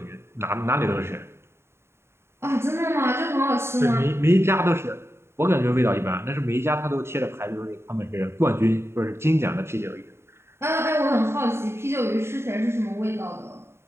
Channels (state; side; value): late; left; 0.12 ms